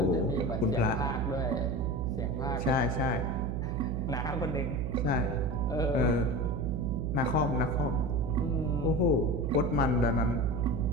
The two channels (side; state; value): right; noise; hum, 1 dB below the sound